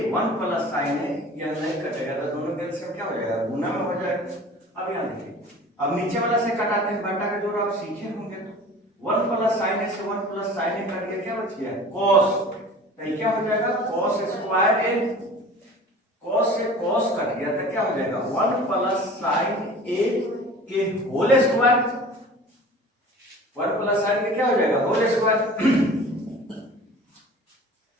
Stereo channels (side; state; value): both; normal; correlation 0.42